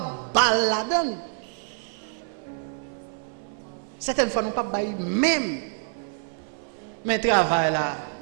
balle là-dedans. Certaines fois nous pas bail même. Mais travail là.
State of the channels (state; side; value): silent; left; 60 dB below the other